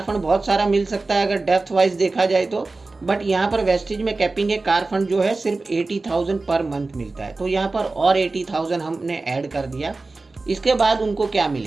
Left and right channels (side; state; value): left; quieter; 3.5 dB